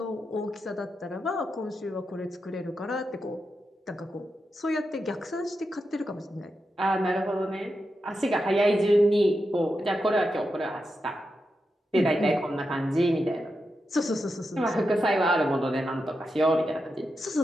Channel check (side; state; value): both; normal; correlation 0.88